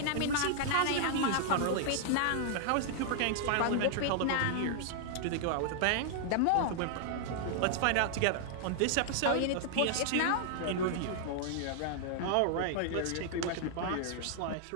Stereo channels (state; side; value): different; both; correlation -0.01